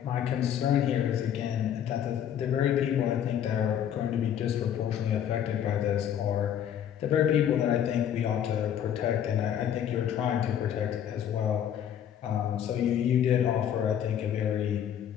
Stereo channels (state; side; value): quieter; right; 9.7 dB